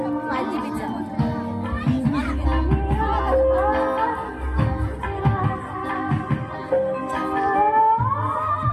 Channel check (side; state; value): both; identical; correlation 1.00